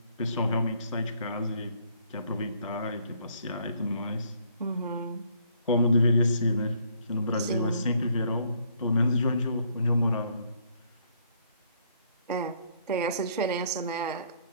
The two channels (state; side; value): inverted; both; correlation -0.66